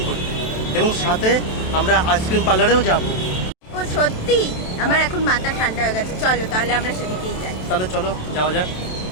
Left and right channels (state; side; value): late; right; 27 ms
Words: করতে, এবং সাথে আমরা আইসক্রিম পার্লারেও যাব। ও সত্যি? আমার এখন মাথা ঠান্ডা হয়ে গেছে, চলো তাহলে আমরা সেদিকেই যাই। তাহলে চলো যাওয়া যাক।